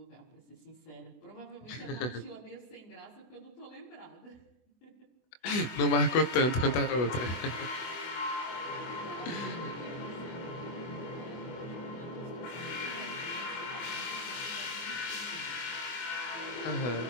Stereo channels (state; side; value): late; right; 24 ms